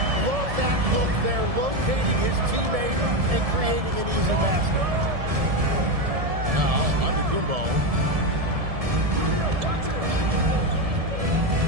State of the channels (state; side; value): late; left; 1.7 ms